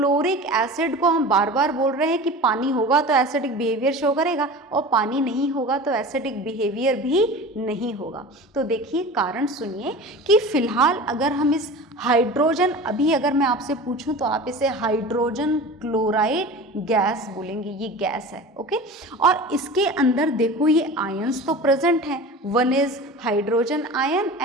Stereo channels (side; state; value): both; normal; correlation 0.35